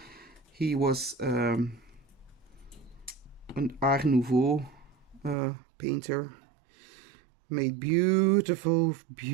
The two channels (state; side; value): drops out; left; at 5.4 s